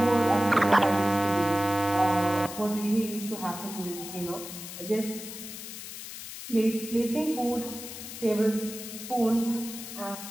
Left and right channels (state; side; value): noise; left; hiss, 10 dB below the sound